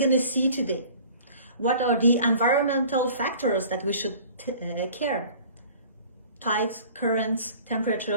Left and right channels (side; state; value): both; inverted; correlation -0.47